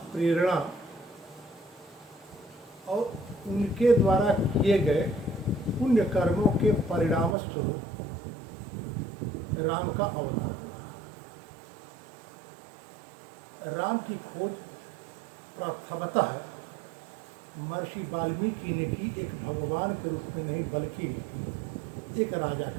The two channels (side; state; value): left; drops out; at 7.4 s